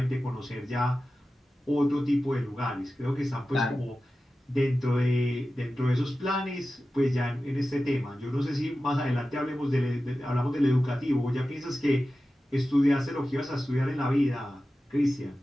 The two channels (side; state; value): both; normal; correlation 0.94